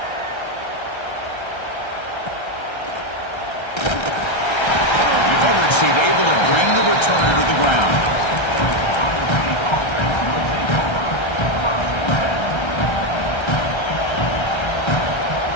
The coverage team able to bring the returner to the ground.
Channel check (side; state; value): right; late; 1.3 ms